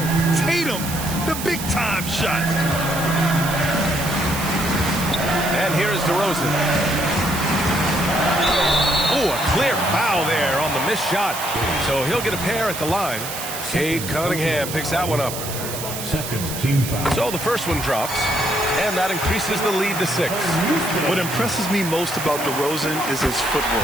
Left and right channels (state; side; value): noise; right; hiss, 7 dB below the sound